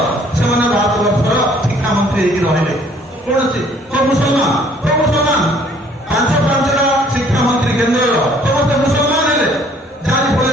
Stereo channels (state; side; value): normal; both; correlation 0.59